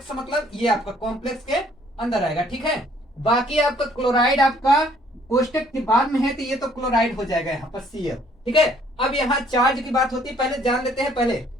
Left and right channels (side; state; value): both; normal; correlation 0.62